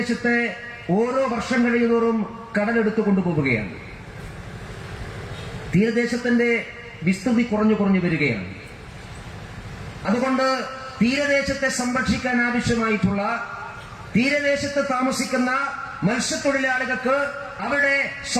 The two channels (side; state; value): both; identical; correlation 1.00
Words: ഓരോ വർഷം കഴിയുന്നതോറും കടലെടുത്തു കൊണ്ടുപോവുകയാണ്. തീരദേശത്തിന്റെ വിസ്തൃതി കുറഞ്ഞു വരികയാണ്. അതുകൊണ്ട് തീരദേശത്തെ സംരക്ഷിക്കാൻ ആവശ്യമായിട്ടുള്ള തീരദേശത്ത് താമസിക്കുന്ന മത്സ്യത്തൊഴിലാളികൾക്ക് അവരുടെ